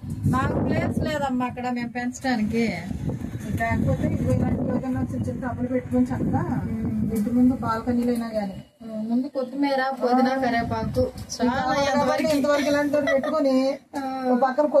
మాకు ప్లేస్ లేదమ్మా అక్కడ మేము పెంచడానికి. లేకపోతే ఇలాంటి ఏదైనా చిన్న చిన్న టబ్బులు పెట్టుకొని చక్కగా ఇంటి ముందు బాల్కనీలో అయినా కానీ ముందు కొత్తిమీర పుదీనా కరివేపాకు ఇంతవరకు ఇలాంటి పెట్టుకొని ఒక పక్కన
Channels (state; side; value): identical; both; correlation 1.00